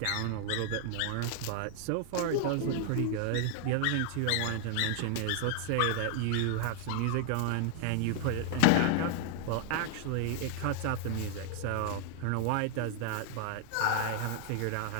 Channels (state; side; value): different; both; correlation 0.00